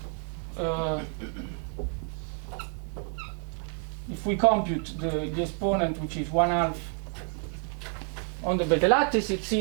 if we compute the exponent, which is 1/2 on the beta lattice, it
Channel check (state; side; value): quieter; left; 39.5 dB